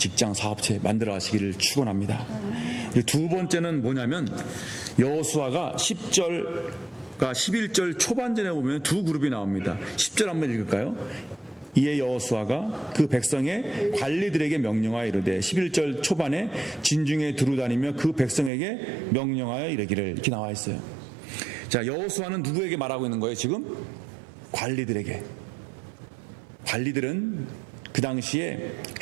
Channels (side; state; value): left; drops out; at 18.5 s